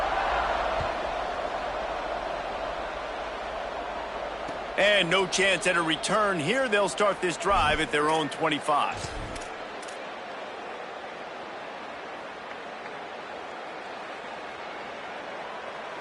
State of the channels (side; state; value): both; identical; correlation 1.00